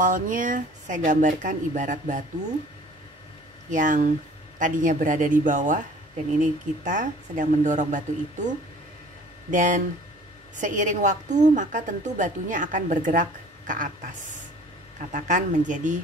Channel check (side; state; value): both; normal; correlation 0.50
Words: saya gambarkan ibarat batu yang tadinya berada di bawah, dan ini kita sedang mendorong batu itu, dan seiring waktu maka tentu batunya akan bergerak ke atas, katakan menjadi